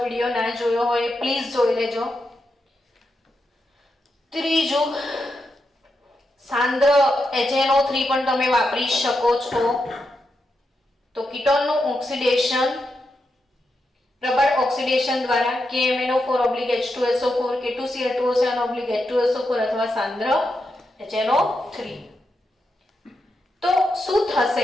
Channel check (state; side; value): normal; both; correlation 0.86